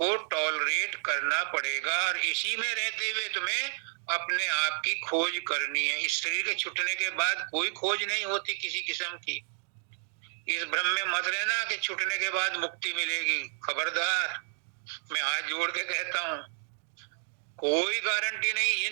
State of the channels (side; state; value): left; silent; 57 dB below the other